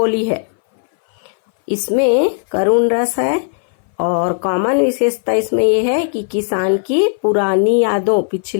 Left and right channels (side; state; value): right; silent; 60 dB below the other